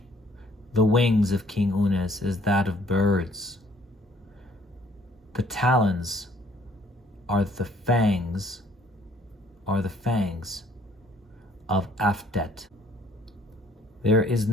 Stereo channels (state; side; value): normal; both; correlation 0.60